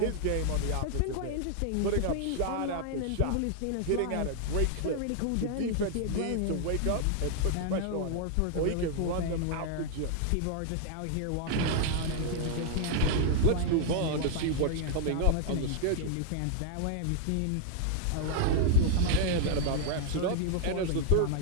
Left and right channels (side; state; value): both; different; correlation 0.00